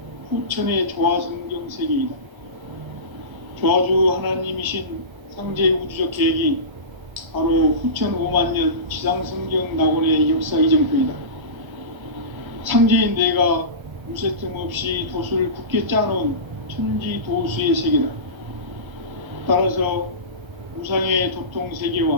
후천의 조화성경 세계이다. 조화주 하나님이신 상제 우주적 계획이 바로 후천 5만년 지상성경 낙원의 역사 이정표이다. 상제인 내가 물새 틈 없이 도수를 굳게 짜놓은 천지 도수의 세계다. 따라서 우상의 도통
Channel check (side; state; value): left; late; 1.3 ms